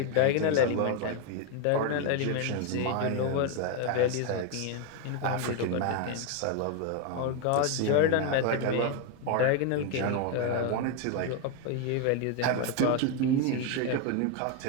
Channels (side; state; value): both; different; correlation 0.02